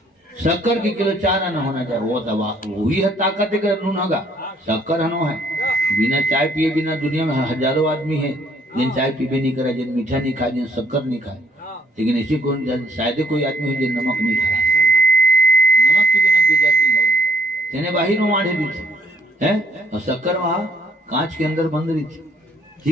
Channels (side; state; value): both; normal; correlation 0.66